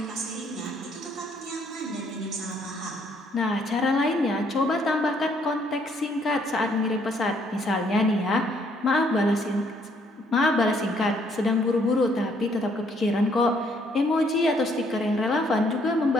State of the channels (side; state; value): both; normal; correlation 0.67